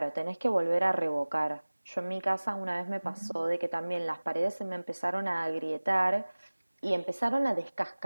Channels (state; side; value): inverted; both; correlation -1.00